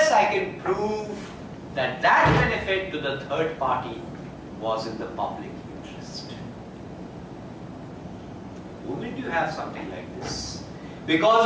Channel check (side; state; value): both; identical; correlation 1.00